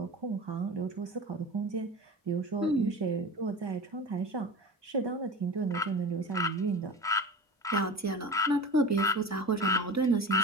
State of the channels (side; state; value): both; normal; correlation 0.31